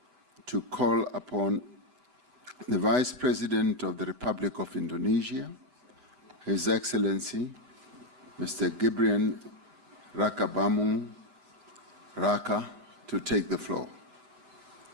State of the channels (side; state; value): left; late; 8.0 ms